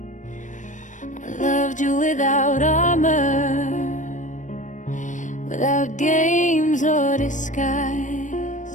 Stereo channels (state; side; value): late; right; 0.37 ms